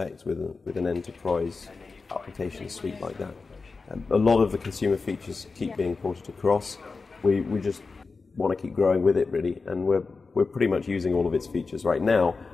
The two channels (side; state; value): right; quieter; 4.3 dB